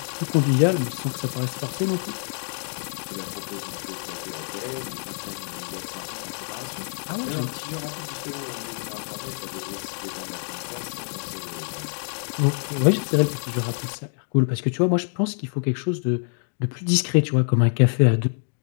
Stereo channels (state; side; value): silent; right; digital silence